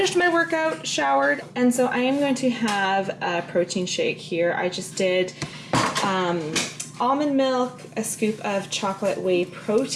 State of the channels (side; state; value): both; identical; correlation 1.00